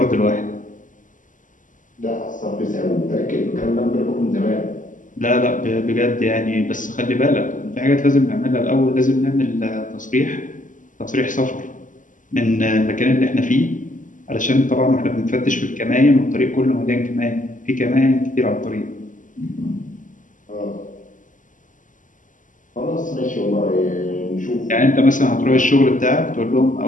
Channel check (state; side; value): late; right; 0.38 ms